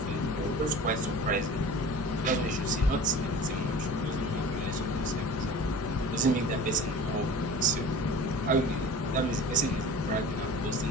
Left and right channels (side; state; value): both; normal; correlation 0.38